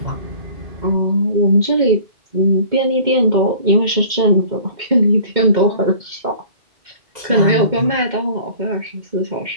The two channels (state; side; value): late; left; 2.1 ms